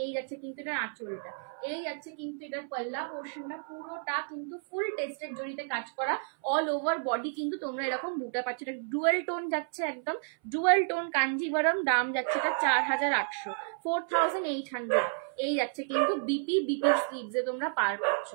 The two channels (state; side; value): silent; left; 57 dB below the other